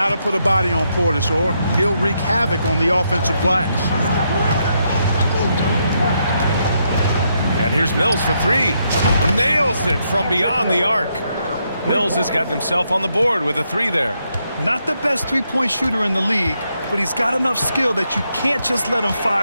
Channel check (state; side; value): inverted; both; correlation -0.78